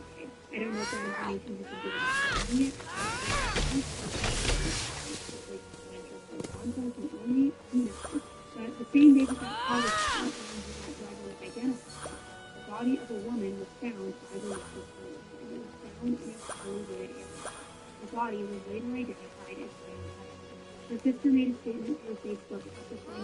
I don't know if that information has been given to the yet. And only who knows. But the same day that that car was found and that driver was identified, the body of a woman was found by the local police, and it was found in a poorly wooded area. The body was later identified as Diane Heather. Her sister made a statement to her Facebook after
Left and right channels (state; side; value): identical; both; correlation 1.00